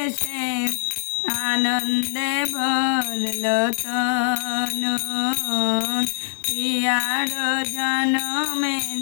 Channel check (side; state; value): right; silent; digital silence